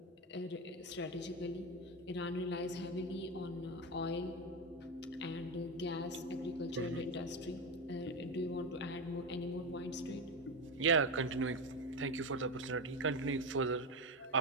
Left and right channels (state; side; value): normal; both; correlation 0.15